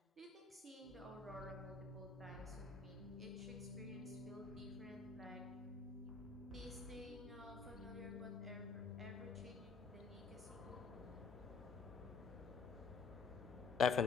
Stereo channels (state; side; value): quieter; right; 4.9 dB